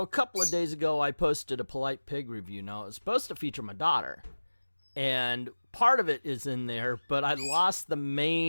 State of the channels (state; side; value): inverted; both; correlation -1.00